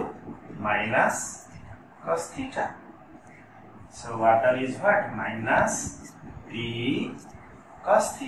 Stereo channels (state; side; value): identical; both; correlation 1.00